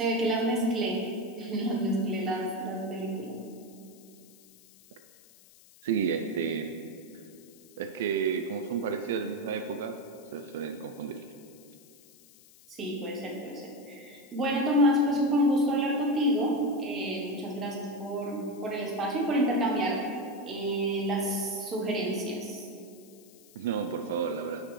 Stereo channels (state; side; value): noise; left; hiss, 24 dB below the sound